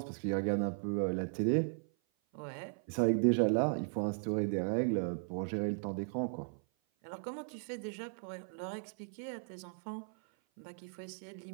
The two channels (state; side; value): silent; left; 53 dB below the other